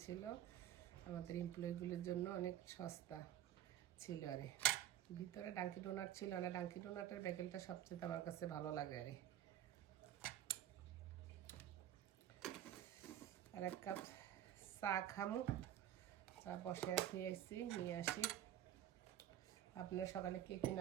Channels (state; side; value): quieter; left; 11.6 dB